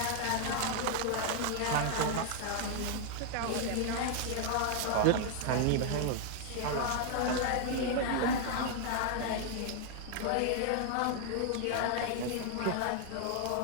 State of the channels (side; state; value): both; different; correlation 0.00